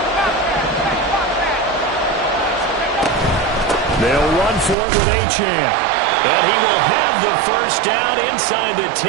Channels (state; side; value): drops out; left; at 4.8 s